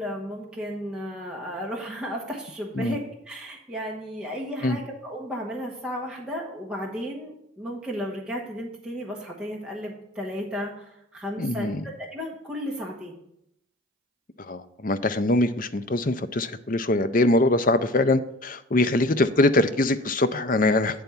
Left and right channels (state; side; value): normal; both; correlation 0.43